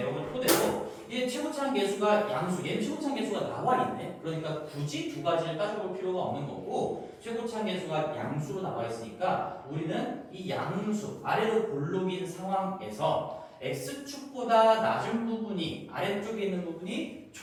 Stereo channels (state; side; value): identical; both; correlation 1.00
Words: 토대로 얘 최고차항 계수가 양수, 얘는 최고차항 계수가 나와 있네. 그러니까 굳이 두 가지를 따져볼 필요가 없는 거고 최고차항 계수가 양수로 나와 있으니까 우리는 이 양수 아래로 볼록인 상황에서 x축보다 낮은 부분이 아래쪽에 있는 부분이